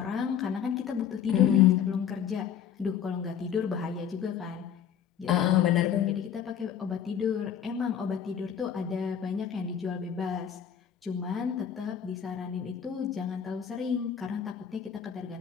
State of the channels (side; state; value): right; quieter; 8.6 dB